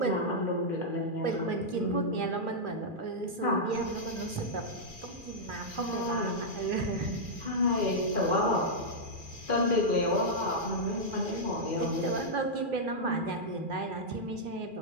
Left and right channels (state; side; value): late; left; 2.4 ms